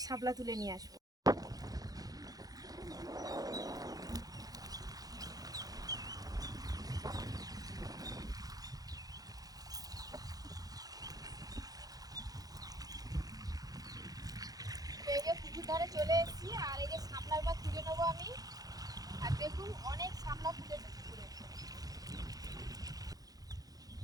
শাপলা তুলে নিয়ে আসবো। এই যে পুকুর ধারে চলে এসেছি, আর এই যে শাপলার বা তুলে নেবো আমি। আর দেখুন অনেক শাপলা ফুটেছে পুকুরে।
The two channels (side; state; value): left; late; 0.18 ms